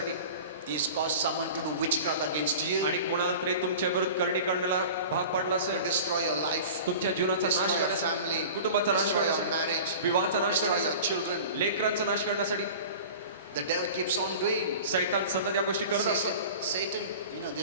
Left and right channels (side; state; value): both; inverted; correlation -0.38